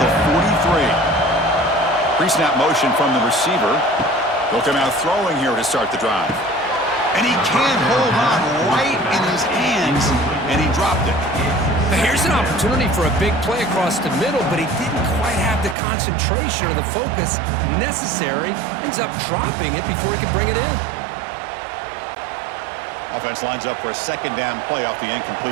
43. Pre-snap motion from the receiver. They'll come out throwing here to start the drive. And he can't hold on right in his hands, and he dropped it. But here's an opportunity for a big play across the middle, but he didn't quite have the concentration or the focus necessary. Ends up dropping it before he can bring it in. Offense lines up for a second down play off the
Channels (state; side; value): drops out; left; at 15.8 s